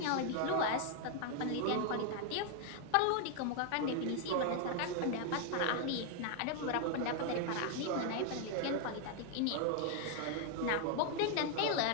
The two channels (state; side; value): different; both; correlation 0.00